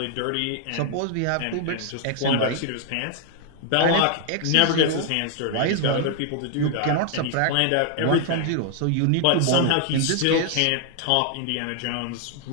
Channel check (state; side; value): different; both; correlation 0.00